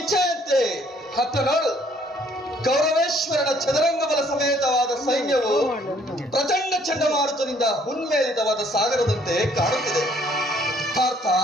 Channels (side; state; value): both; normal; correlation 0.63